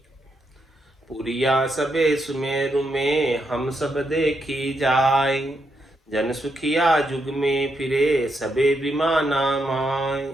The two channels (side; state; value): both; normal; correlation 0.80